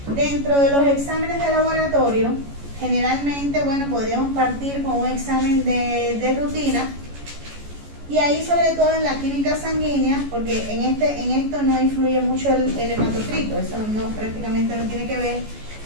dentro de los exámenes de laboratorio, generalmente, bueno, podríamos partir con un examen de rutina, y ahí sobre todo en la química sanguínea, porque en esto no influye mucho el hematocrito, eso prácticamente no tiene que ver,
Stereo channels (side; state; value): left; late; 14 ms